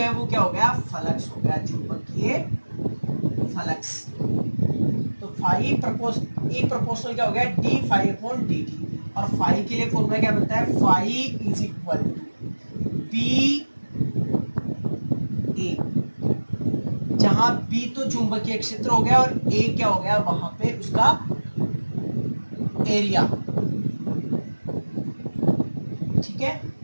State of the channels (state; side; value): inverted; both; correlation -1.00